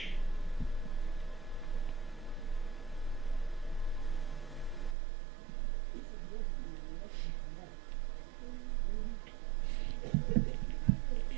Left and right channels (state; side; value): drops out; left; at 5.0 s